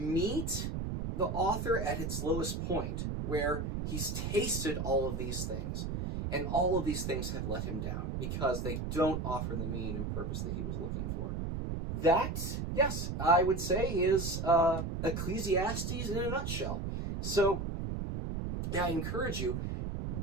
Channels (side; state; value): right; noise; rumble, 3 dB below the sound